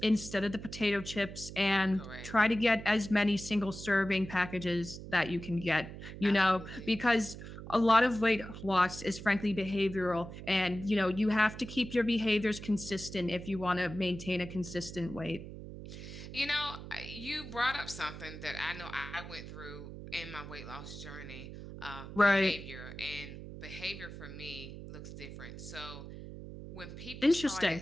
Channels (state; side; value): noise; right; hum, 11 dB below the sound